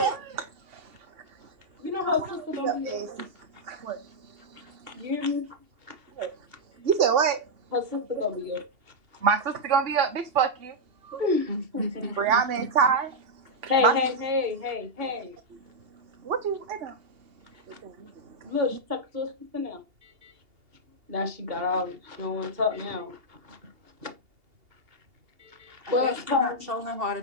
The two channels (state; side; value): late; left; 2.8 ms